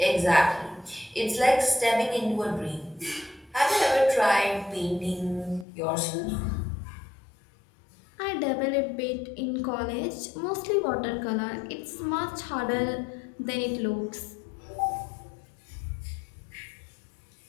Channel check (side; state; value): right; drops out; at 5.7 s